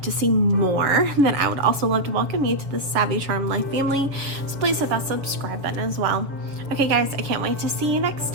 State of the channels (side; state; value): left; late; 7.0 ms